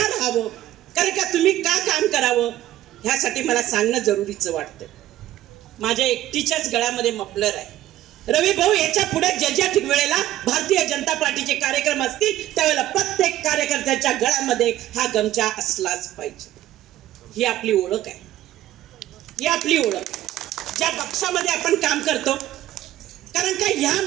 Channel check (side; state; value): left; quieter; 14.0 dB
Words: कारण का तुम्ही का काम करावं, ह्यासाठी मला सांगणं जरुरीचं वाटतं. माझ्या एकटीच्याच गळ्यामध्ये मफलर आहे. रवी भाऊ, याच्या पुढे ज्या वेळेला भारतीय जनता पार्टीचे कार्यक्रम असतील त्यावेळेला प्रत्येक कार्यकर्त्याच्या गळ्यामध्ये हा गमछा असलाच पाहिजे. ही आपली ओळख आहे, ही आपली ओळख. ज्या पक्षामध्ये आपण काम करतो, कारण का ह्या